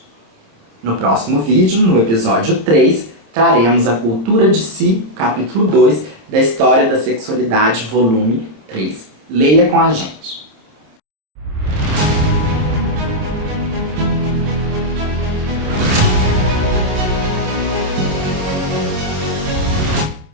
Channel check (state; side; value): late; left; 27 ms